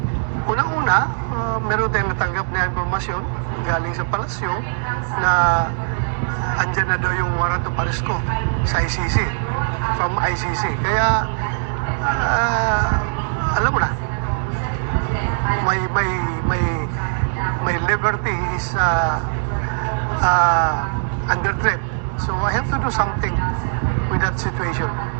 unang-una, meron tayong natanggap na informasyon galing sa palasyo na andyan na daw yung warrant of arrest ko sa ICC, from ICC. Kaya, alam mo na, my liberty is under threat. So I have to do something with that situation.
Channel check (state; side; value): silent; left; digital silence